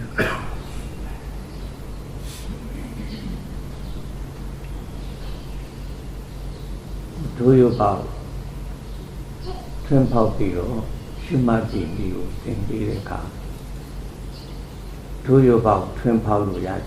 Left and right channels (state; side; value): identical; both; correlation 1.00